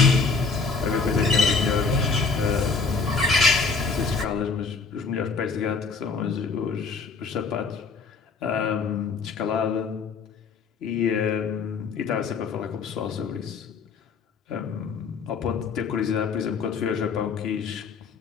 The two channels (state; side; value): quieter; right; 4.7 dB